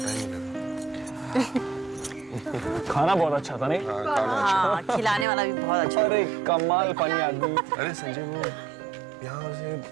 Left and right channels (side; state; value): left; drops out; at 5.2 s